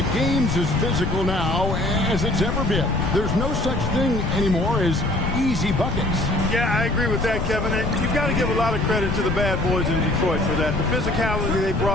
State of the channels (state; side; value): noise; left; rumble, 2 dB below the sound